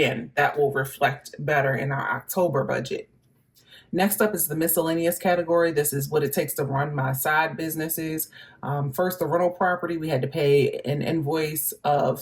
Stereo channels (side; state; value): both; identical; correlation 1.00